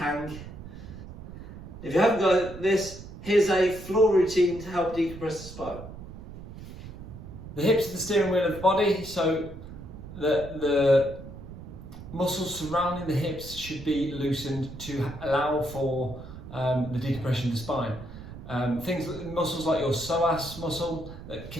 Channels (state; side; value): noise; right; rumble, 13 dB below the sound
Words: If you haven't got this, here's a floor routine to help decompress the spine. The hips are the steering wheel of the body, so the muscles surrounding the hips should be loosened to allow for the decompression of the spine. Muscles like your psoas muscle that